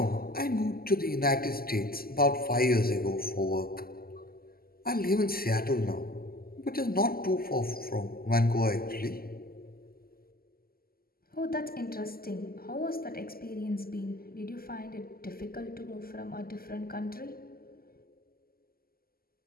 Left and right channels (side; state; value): right; late; 0.43 ms